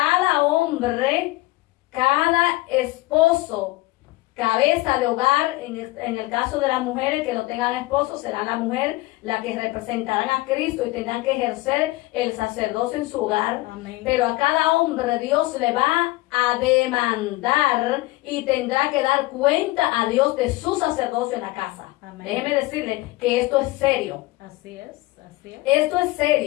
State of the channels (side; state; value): right; quieter; 20.1 dB